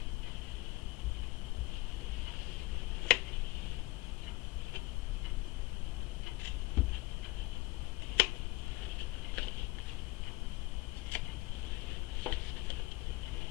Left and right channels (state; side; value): quieter; right; 20.1 dB